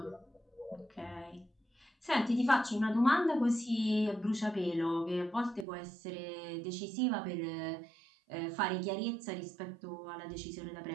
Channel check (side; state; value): left; drops out; at 5.7 s